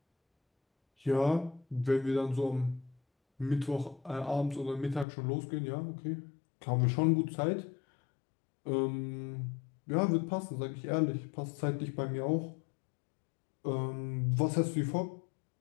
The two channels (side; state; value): right; drops out; at 5.1 s